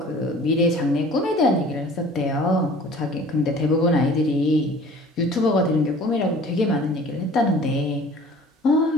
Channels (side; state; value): both; normal; correlation 0.47